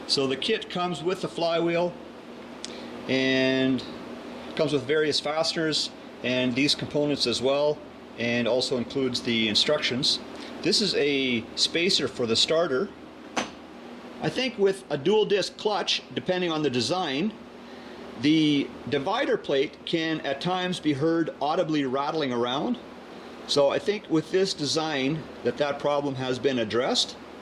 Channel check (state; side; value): identical; both; correlation 1.00